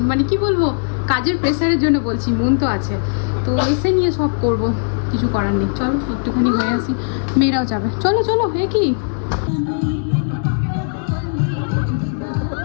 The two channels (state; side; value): silent; right; digital silence